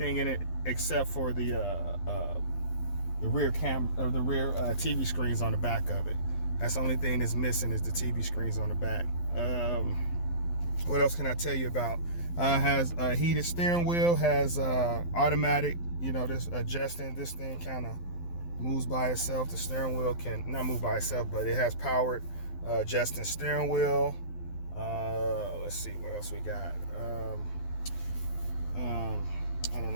in it except for the rear TV screens on the back of it. That's the only thing that's missing is the TV screens on the back. What else can I tell you about? Has a heated steering wheel, has automatic, this adjusting. This thing kind of moves by itself. The steering wheel can not move by itself, but it has powered adjusting steering wheel. Let's see what else we got. I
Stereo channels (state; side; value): late; right; 12 ms